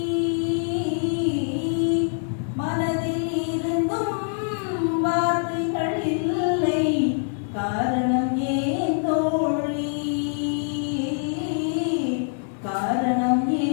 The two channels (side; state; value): right; silent; digital silence